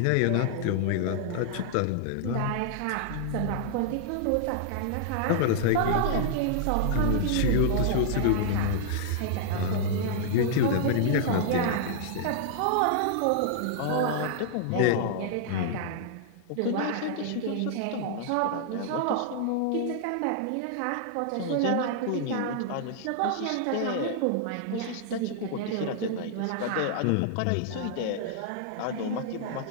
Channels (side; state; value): both; different; correlation -0.01